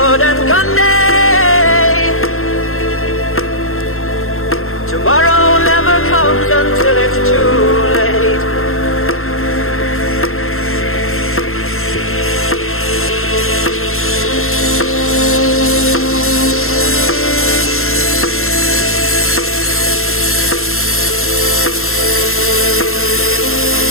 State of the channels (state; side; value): late; right; 0.62 ms